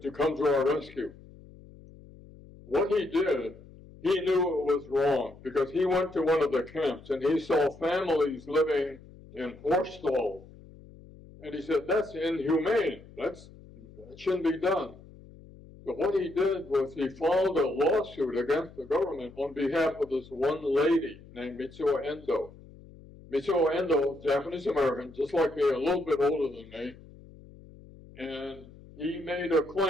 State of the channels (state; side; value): noise; left; hum, 21 dB below the sound